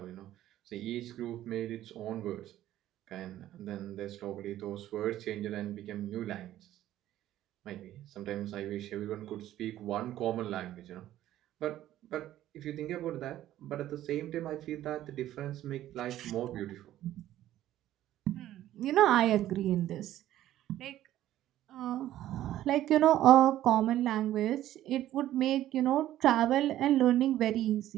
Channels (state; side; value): quieter; left; 13.3 dB